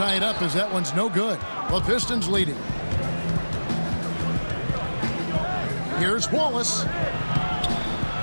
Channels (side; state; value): both; inverted; correlation -1.00